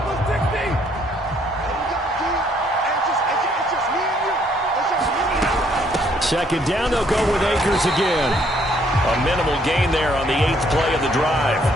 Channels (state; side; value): normal; both; correlation 0.67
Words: Second down, they'll go with Akers again. A minimal gain there on the 8th play of the drive.